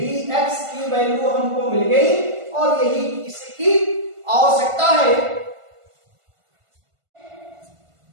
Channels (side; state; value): left; late; 1.5 ms